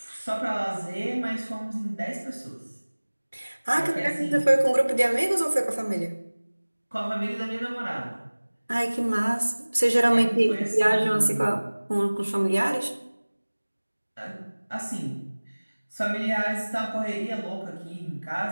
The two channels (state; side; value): inverted; both; correlation -1.00